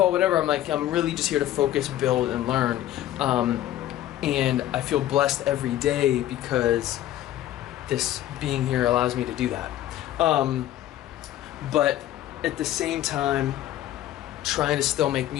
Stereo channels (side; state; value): right; quieter; 13.2 dB